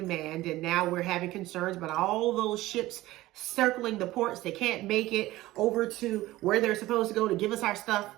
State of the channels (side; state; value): left; quieter; 17.1 dB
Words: and now we're having concerns about all those ships circling the ports. They can't make it over to where they're supposed to go to give us our stuff.